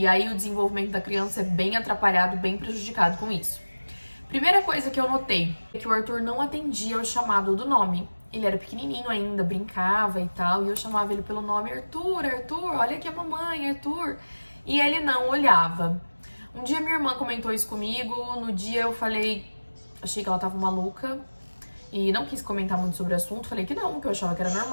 aí o desenvolvimento da criança é bem atrapalhado, bem prejudicado com isso. Primeira coisa que eu notei é que o Arthur não atendia o chamado do nome. Ele era pequenininho ainda, brincava e tal, e eu chamava ele pelo nome: Arthur, Arthur, olha aqui a mamãe, Arthur. E ele não olhava. Um dia minha irmã comentou isso comigo, no dia eu falei, achei que ela tava maluca e não quis comentar muito sobre o assunto, falei que não, que eu achava que era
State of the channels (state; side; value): inverted; both; correlation -1.00